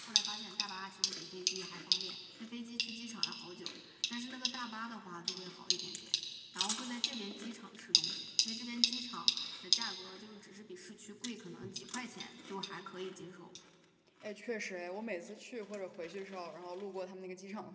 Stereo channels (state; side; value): identical; both; correlation 1.00